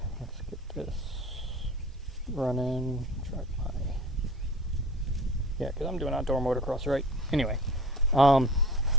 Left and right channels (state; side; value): normal; both; correlation 0.41